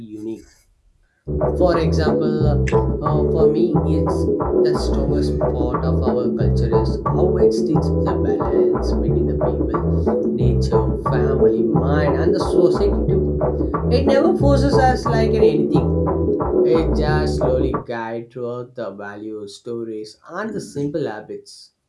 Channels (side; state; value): both; identical; correlation 1.00